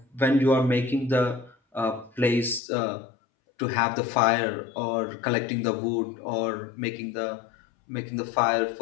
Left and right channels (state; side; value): drops out; right; at 2.6 s